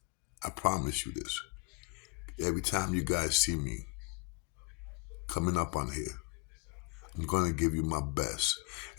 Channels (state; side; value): quieter; right; 29.6 dB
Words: I promise you this. Every time you guys see me coming up on here, I'm going to give you my best.